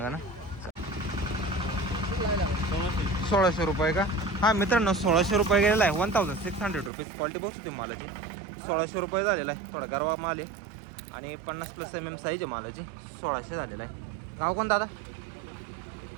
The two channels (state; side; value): drops out; left; at 6.9 s